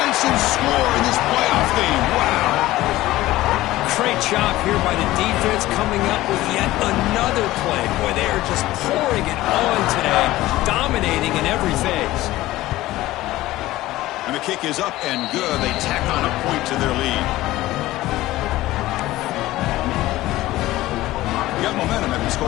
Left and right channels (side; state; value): right; quieter; 16.8 dB